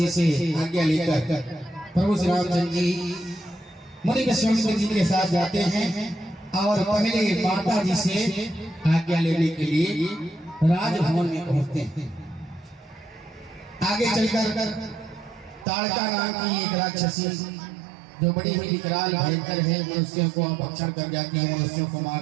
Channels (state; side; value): drops out; left; at 15.7 s